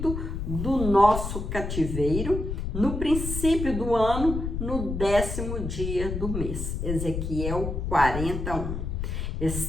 do nosso cativeiro, no princípio do ano, no 10º dia do mês. Ezequiel 40:1.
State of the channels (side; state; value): left; noise; rumble, 4 dB below the sound